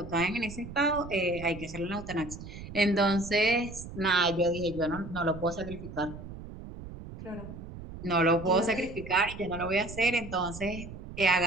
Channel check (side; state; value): right; noise; rumble, 12 dB below the sound